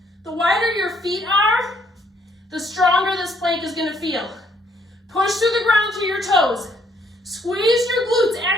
The wider your feet are, the stronger this plank is going to feel. Push through the ground through your toes. Squeeze your glutes.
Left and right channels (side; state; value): both; normal; correlation 0.68